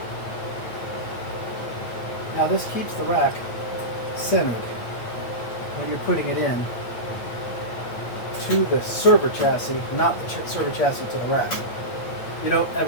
Now this keeps the rack centered when you're putting it in to the server chassis, not the server chassis to the rack. You don't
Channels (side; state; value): right; late; 8.7 ms